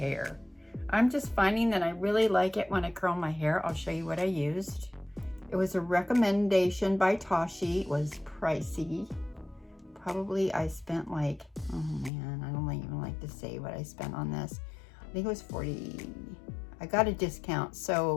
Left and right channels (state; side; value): drops out; right; at 12.1 s